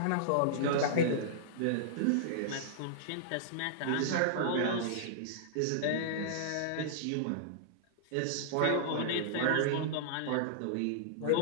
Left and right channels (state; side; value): different; both; correlation -0.02